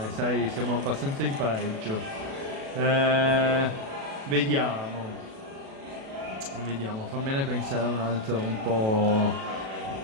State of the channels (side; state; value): left; late; 37 ms